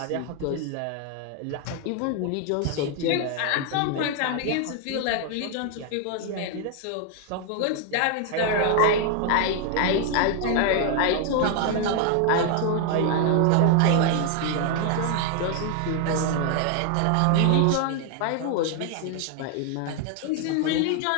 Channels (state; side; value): different; both; correlation 0.00